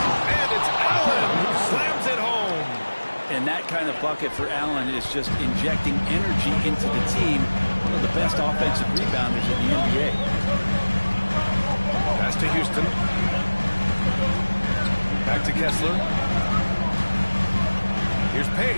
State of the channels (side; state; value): both; inverted; correlation -1.00